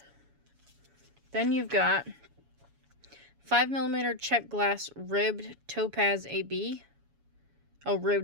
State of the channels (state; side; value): late; left; 7.1 ms